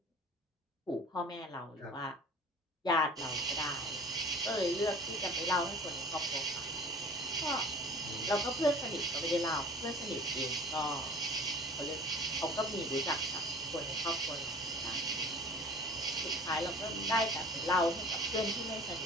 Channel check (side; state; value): both; normal; correlation 0.44